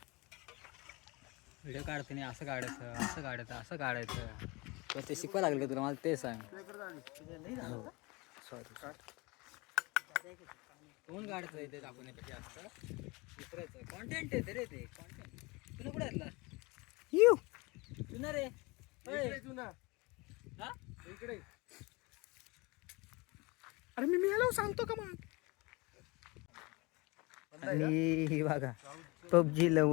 व्हिडिओ काढते नाही असं काढायचं असं काढायचं असं काढायचं. ते शिकवायला लागलं तुला, मला ते सांग. सॉरी कोण काढतं ते दाखवण्यापेक्षा असतं दुसऱ्याचं कॉन्टेंट आहे रे. ते कॉन्टेंट तुला कुठे घातला येऊ तुला रे. हा इकडे. अरे मी याला सांगतो का मग. आणि हे बघा पबजी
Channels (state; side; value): quieter; right; 25.2 dB